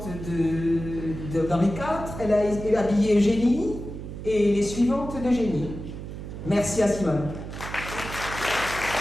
d'Henri IV. Elle a habillé Eugénie et les suivantes d'Eugénie. Merci à Simone.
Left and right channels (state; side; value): noise; right; hum, 9 dB below the sound